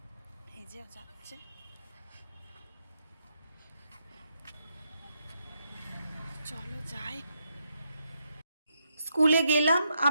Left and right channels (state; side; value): inverted; both; correlation -0.80